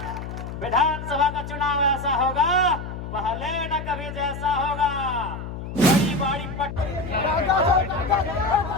विधानसभा का चुनाव ऐसा होगा, पहले न कभी जैसा होगा। बड़ी बड़ी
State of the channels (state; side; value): noise; left; hum, 8 dB below the sound